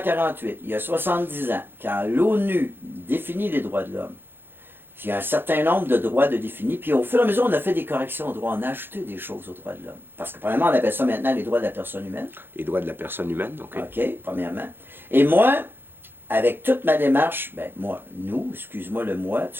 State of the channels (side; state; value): left; late; 0.10 ms